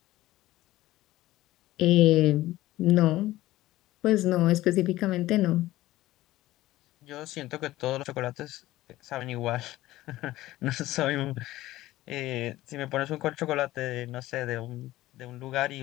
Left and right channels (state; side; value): quieter; right; 16.4 dB